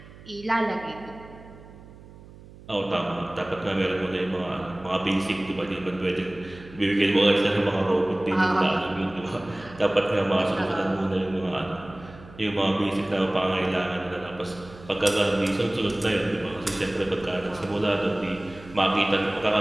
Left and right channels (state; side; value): noise; right; hum, 20 dB below the sound